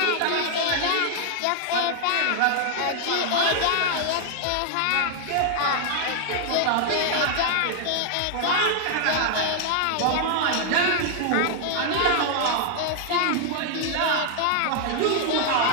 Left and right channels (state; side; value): different; both; correlation 0.00